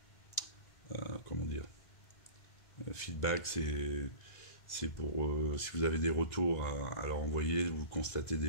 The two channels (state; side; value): late; right; 2.0 ms